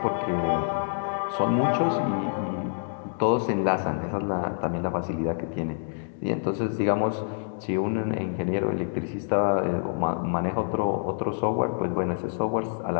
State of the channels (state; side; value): silent; right; digital silence